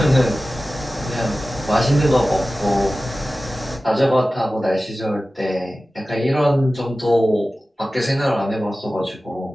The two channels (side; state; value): both; normal; correlation 0.96